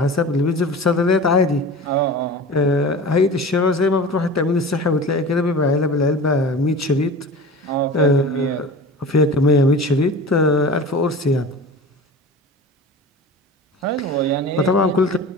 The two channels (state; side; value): normal; both; correlation 0.36